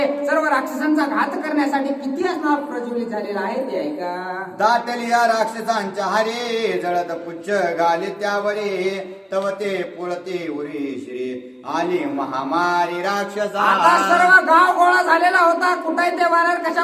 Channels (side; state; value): both; identical; correlation 1.00